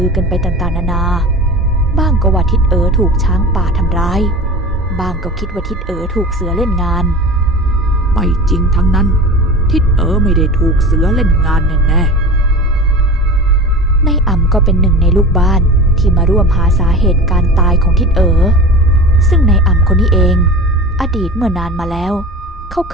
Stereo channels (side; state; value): both; normal; correlation 0.33